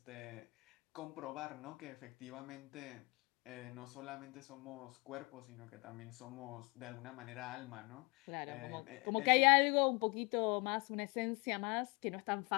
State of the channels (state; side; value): quieter; right; 28.6 dB